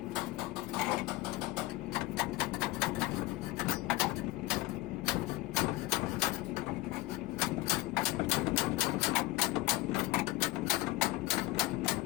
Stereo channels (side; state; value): right; quieter; 19.5 dB